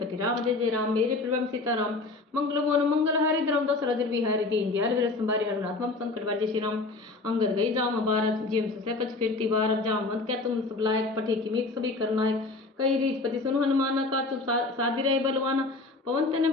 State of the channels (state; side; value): quieter; right; 3.4 dB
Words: राम जय जय राम मेरे प्रभु सीताराम मंगल मोन मंगल हरि द्रम दशरथ बिहारी दीन दयाल वीर संभारी हरनाथ मम संकट बार जय श्री राम। अंगद गई जाम बारह जिम से कच फिरती बारह जाम मत क्या तुम सब लायक पठे की मीक सभी करना है कई रीच पति सुन हनुमाना का चुप साधी रहे बलवाना पवन तने